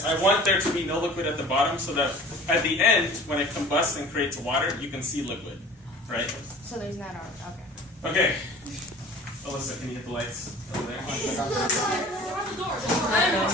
I want there to be no liquid at the bottom, so that at the end, when it combusts and creates water, you can see liquid, right? So there's not okay. Okay. Alyssa, can you hit the lights over there? I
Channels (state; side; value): normal; both; correlation 0.44